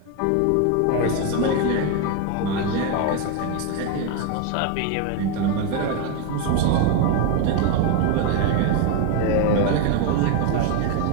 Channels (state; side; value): different; both; correlation 0.02